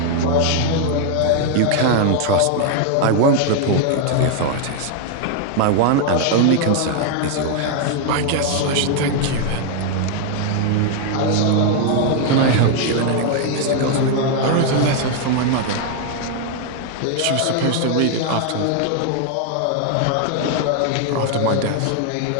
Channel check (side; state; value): both; different; correlation 0.00